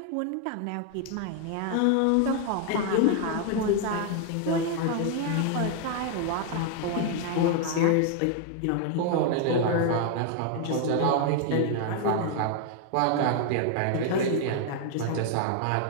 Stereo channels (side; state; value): both; different; correlation 0.00